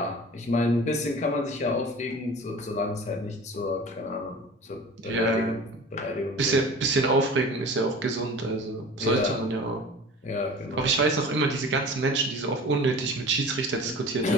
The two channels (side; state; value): both; normal; correlation 0.39